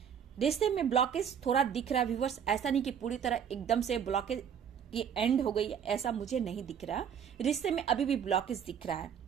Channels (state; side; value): quieter; left; 8.1 dB